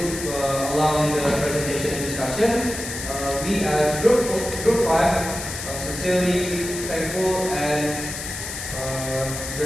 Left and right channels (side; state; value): left; noise; hiss, 7 dB below the sound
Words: along the presentation and discussion. We as group 5 sincerely thankful and